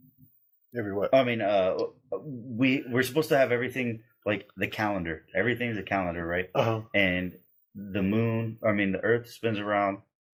Every what? I mean, we're supposed to have everything like the calendar. Everything's a calendar, right? And the moon, the Earth spins around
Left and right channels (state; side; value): identical; both; correlation 1.00